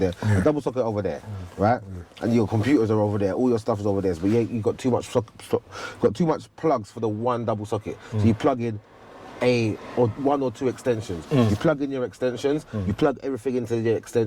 a double socket over there, right? and your computers are over there, all your stuff is over there, but you got too much got too much plugs for the one double socket. So you plug in one or two extensions. You plug in your extensions, you plug everything into your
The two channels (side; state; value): both; identical; correlation 1.00